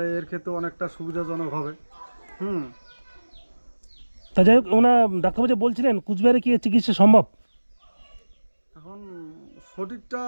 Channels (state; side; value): inverted; both; correlation -1.00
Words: এর ক্ষেত্রে অনেকটা সুবিধাজনক হবে। তা যাই হোক, ওনা ডাক্তারবাবু যে বলছিলেন কুচবিহারে কি চিকিৎসা সম্ভব? এখন সঠিকটা